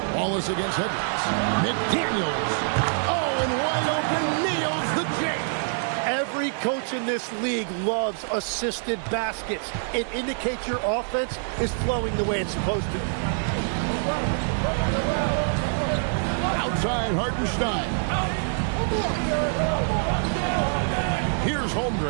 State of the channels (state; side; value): silent; left; digital silence